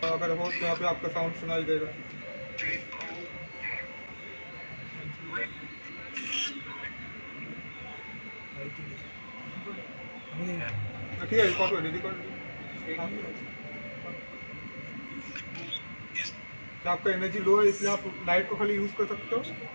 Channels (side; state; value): both; inverted; correlation -1.00